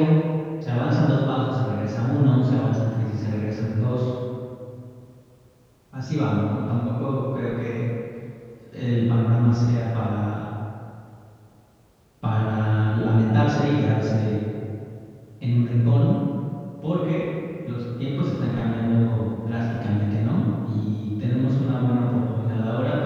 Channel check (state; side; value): identical; both; correlation 1.00